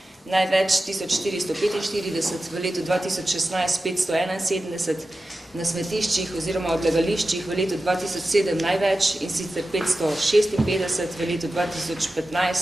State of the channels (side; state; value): both; normal; correlation 0.93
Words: največ 1445, v letu 2016 571, na smetiščih oziroma odlagališčih v letu 2007 največ in sicer 556, v letu